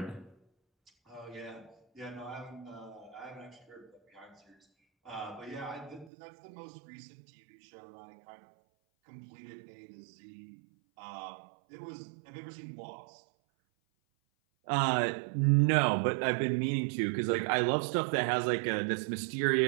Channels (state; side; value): drops out; left; at 6.1 s